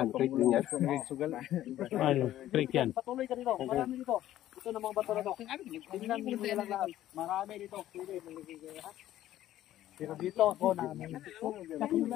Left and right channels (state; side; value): quieter; right; 13.2 dB